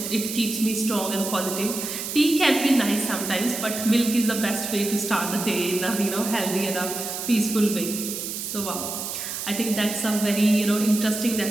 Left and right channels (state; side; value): noise; right; hiss, 5 dB below the sound